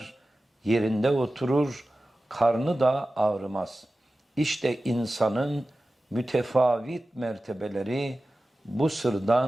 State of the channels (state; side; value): normal; both; correlation 0.95